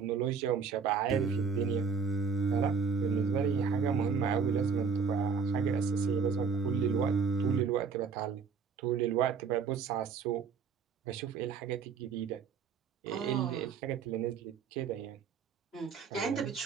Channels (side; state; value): left; quieter; 5.8 dB